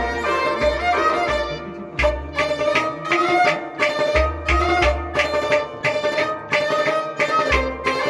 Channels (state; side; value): identical; both; correlation 1.00